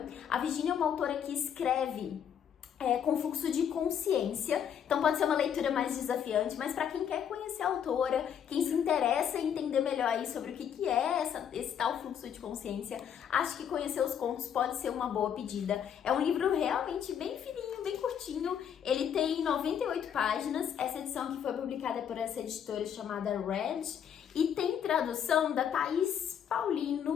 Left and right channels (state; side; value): quieter; right; 8.6 dB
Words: A Virginia é uma autora que escreve com fluxo de consciência, então pode ser uma leitura mais desafiante, mas para quem quer conhecer a autora, quem se interessa em entender melhor aí sobre o que é esse tal fluxo de consciência, acho que conhecer os contos pode ser uma boa pedida. É um livro realmente bem fininho, bem curtinho, ele tem 98 páginas, essa edição que foi publicada por essa editora chamada Red, e tem tradução da Thaís